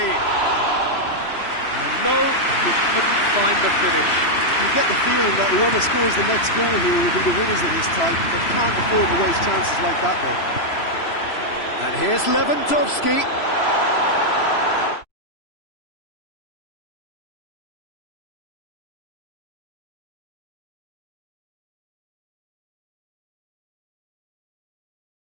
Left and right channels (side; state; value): right; late; 3.0 ms